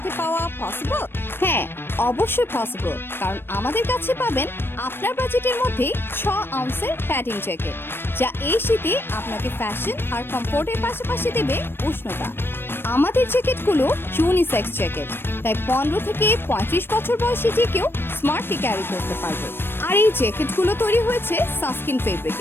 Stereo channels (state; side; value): late; right; 0.10 ms